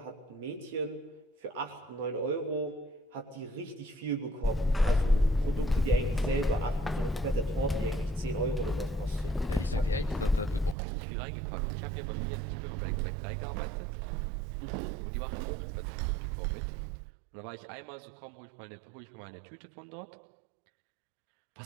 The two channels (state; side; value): drops out; left; at 10.8 s